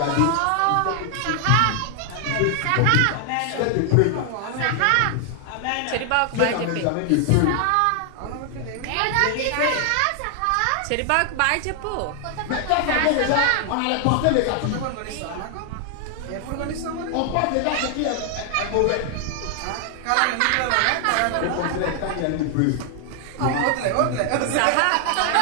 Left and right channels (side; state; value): both; different; correlation 0.00